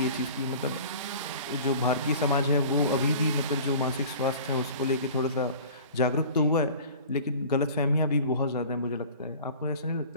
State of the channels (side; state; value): both; inverted; correlation -0.43